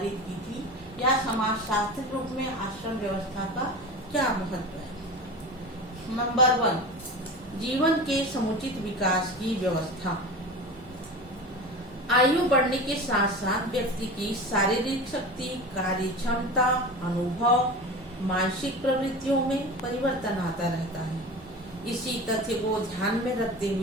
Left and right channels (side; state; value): both; normal; correlation 0.31